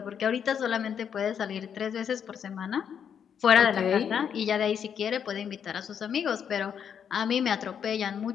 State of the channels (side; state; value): right; quieter; 7.9 dB